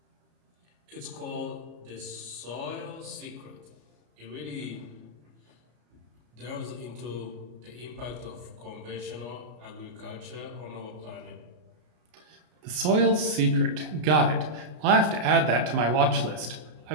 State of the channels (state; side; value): late; left; 33 ms